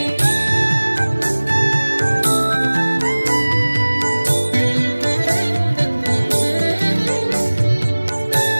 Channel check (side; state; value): both; inverted; correlation -1.00